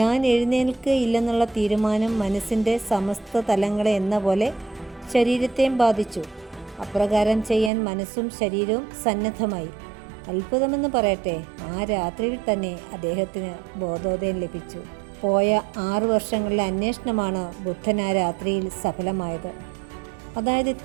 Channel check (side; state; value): left; drops out; at 7.7 s